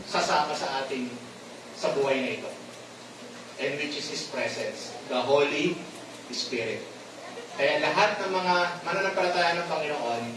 sasama sa ating sa buhay na ito, and which is His presence, the Holy Spirit. Kaya lahat ng mga mananampalataya ng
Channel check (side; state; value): both; identical; correlation 1.00